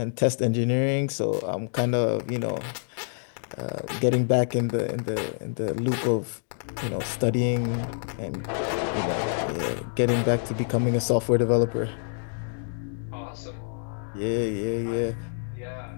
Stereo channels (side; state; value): right; silent; digital silence